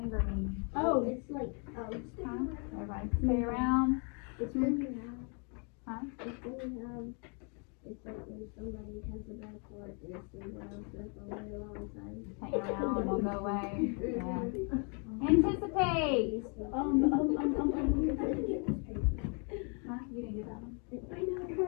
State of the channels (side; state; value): right; quieter; 37.0 dB